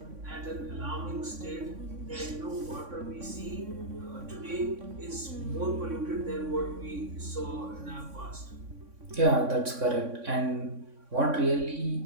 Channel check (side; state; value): left; late; 3.6 ms